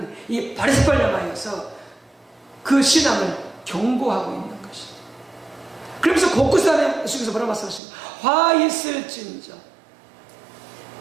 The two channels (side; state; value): left; drops out; at 7.8 s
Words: 이 바리새파를 향하여서 그 신앙을 경고하고 있는 것이죠. 그러면서 곳곳에 예수께서 뭐라고 말씀하십니까? 화 있을진저,